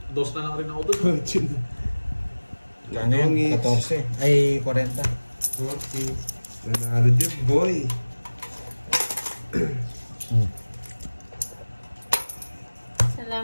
Dos na lang rin ako doon. Ano yun? 14. Ay, 40. Okay. Nanalo din, boy.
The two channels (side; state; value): both; inverted; correlation -1.00